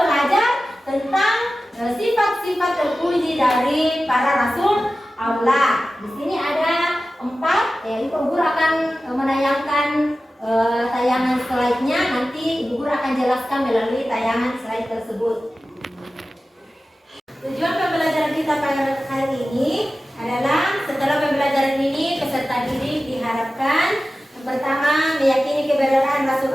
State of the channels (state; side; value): normal; both; correlation 0.95